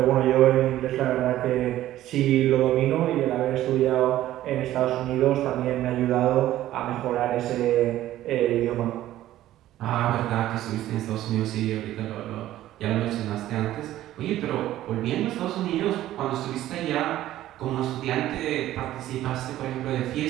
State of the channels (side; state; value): left; quieter; 13.9 dB